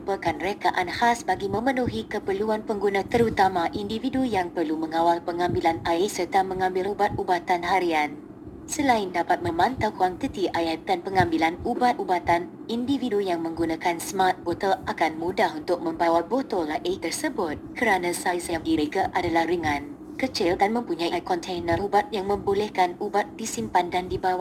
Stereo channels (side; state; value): both; identical; correlation 1.00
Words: rekaan khas bagi memenuhi keperluan pengguna terutama individu yang perlu mengawal pengambilan air serta mengambil ubat-ubatan harian. Selain dapat memantau kuantiti air dan pengambilan ubat-ubatan, individu yang menggunakan Smart Bottle akan mudah untuk membawa botol air tersebut kerana saiz yang direka adalah ringan, kecil dan mempunyai kontainer ubat yang membolehkan ubat disimpan dan